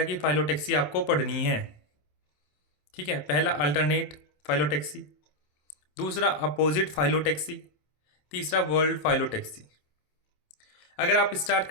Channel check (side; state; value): right; late; 27 ms